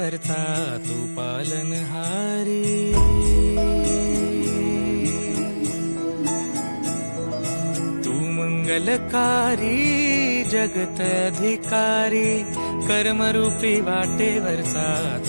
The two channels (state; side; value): inverted; both; correlation -1.00